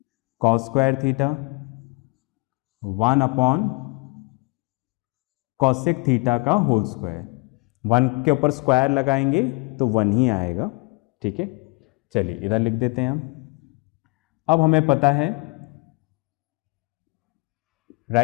कॉस स्क्वायर थीटा 1/कॉसेक थीटा का होल स्क्वायर। 1 के ऊपर स्क्वायर लगाएंगे तो 1 ही आएगा। ठीक है, चलिए इधर लिख देते हैं हम। अब हमें पता है,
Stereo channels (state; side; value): quieter; right; 28.7 dB